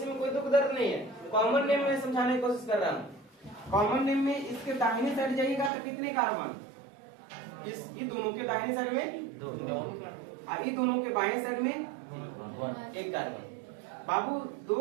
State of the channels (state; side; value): drops out; left; at 5.7 s